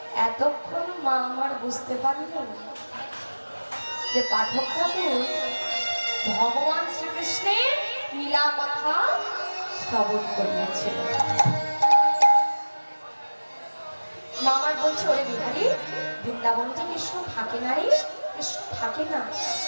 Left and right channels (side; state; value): both; inverted; correlation -1.00